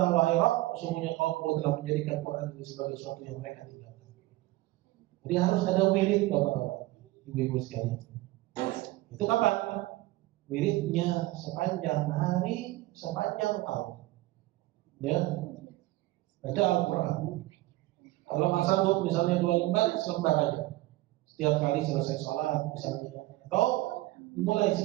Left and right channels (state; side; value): quieter; left; 18.4 dB